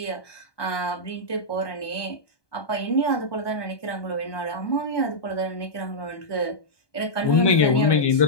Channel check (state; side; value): late; right; 1.2 ms